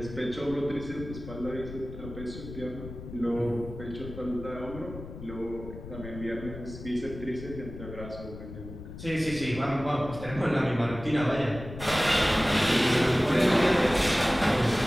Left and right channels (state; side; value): noise; left; rumble, 12 dB below the sound